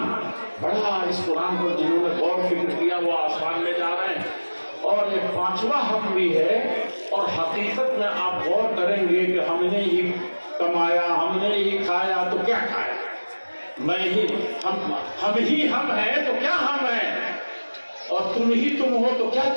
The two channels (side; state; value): both; inverted; correlation -1.00